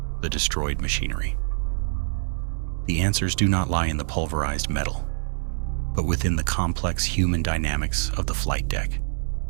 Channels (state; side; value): silent; left; digital silence